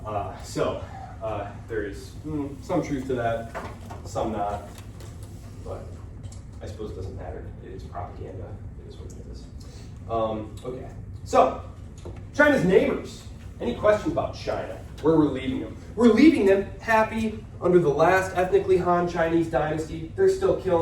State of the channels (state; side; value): identical; both; correlation 1.00